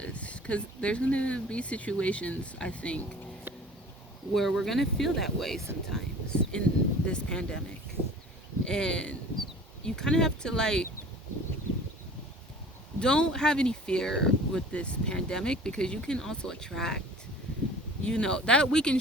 because there's gonna be situations, I think, where we're gonna feel that way sometimes in this pandemic, and you kind of have to like don't have any fear with this pandemic, because you can also attract, that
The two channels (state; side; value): normal; both; correlation 0.45